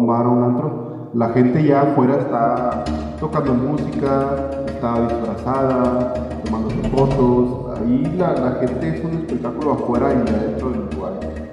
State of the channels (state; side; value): identical; both; correlation 1.00